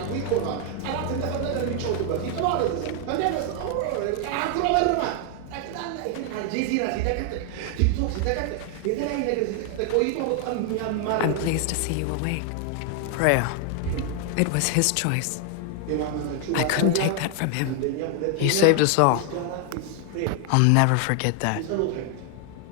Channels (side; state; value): both; different; correlation 0.00